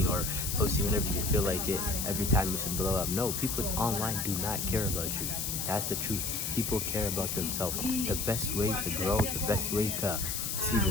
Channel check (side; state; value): left; noise; hiss, 2 dB below the sound